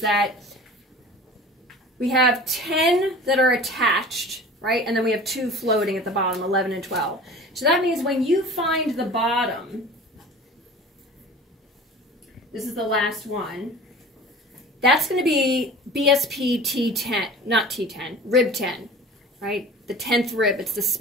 that we have 10 that are attached, right? And then we have 2 floating at the bottom, 11 and 12. So that means when you find the bottom, this is the last one, that's going to be BSP T10, not T10, rib 10, right? The 10th rib, it's the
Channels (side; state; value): both; normal; correlation 0.40